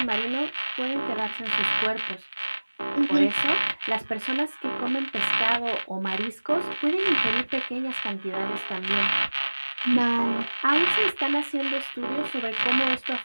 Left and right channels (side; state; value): both; inverted; correlation -1.00